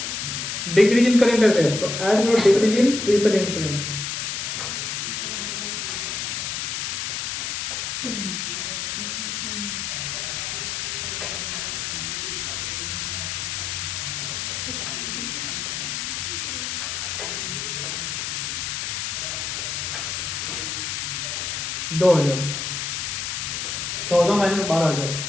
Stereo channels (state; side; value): noise; left; hiss, 2 dB below the sound